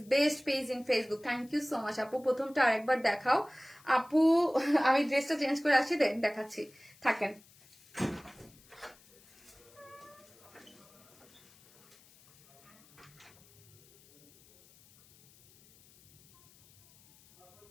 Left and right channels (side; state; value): left; noise; hiss, 26 dB below the sound